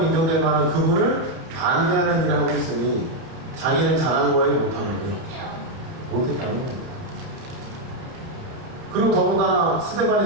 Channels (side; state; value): left; late; 30 ms